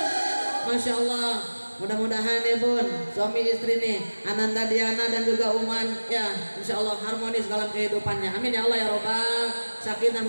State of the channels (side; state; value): both; inverted; correlation -1.00